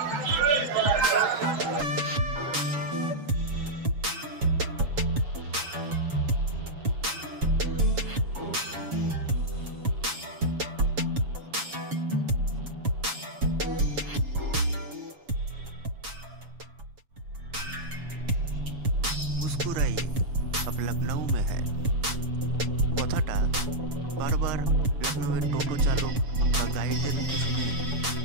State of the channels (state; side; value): late; left; 7.1 ms